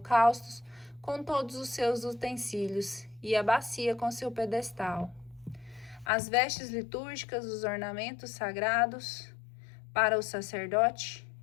com todos os seus utensílios, e a bacia com seu pedestal. As vestes litúrgicas, os ornamentos sagrados para o sacerdote,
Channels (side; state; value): right; drops out; at 6.1 s